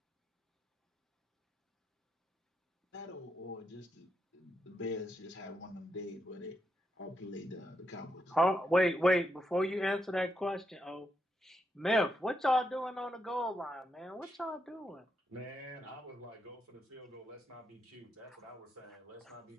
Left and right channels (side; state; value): both; normal; correlation 0.82